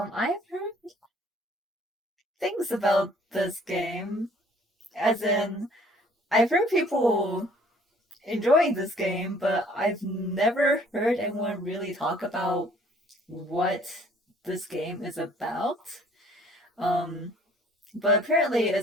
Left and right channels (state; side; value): normal; both; correlation 0.57